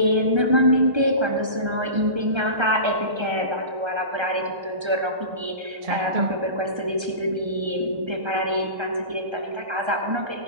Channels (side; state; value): left; late; 1.3 ms